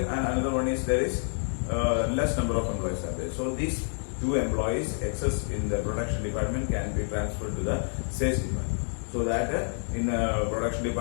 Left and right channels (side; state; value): right; silent; 59 dB below the other